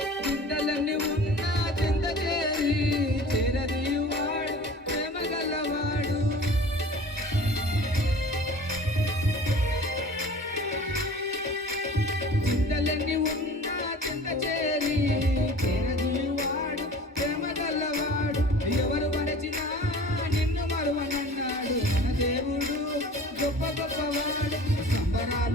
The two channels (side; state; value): both; normal; correlation 0.42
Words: చింతలన్నీ ఉన్న చింత చేరి చిరదీవాడు ప్రేమ గల్లవాడు చింతలన్నీ ఉన్న చింత చేరి చిరదీవాడు ప్రేమ గల్లవాడు ఎవరు మరచినా నిన్ను మరువనన్నాడు మన దేవుడు గొప్ప గొప్పవాడు.